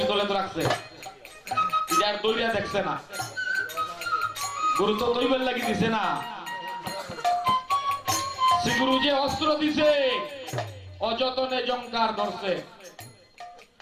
তোলে তো রাখছে, এটা আর দৈরা দেখছে না। গুরু তো দৈবের লাগি দিছে না, শ্রী গুরু যে অস্ত্র দিছে অযতনে জঙ্কার ধরছে,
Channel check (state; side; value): identical; both; correlation 1.00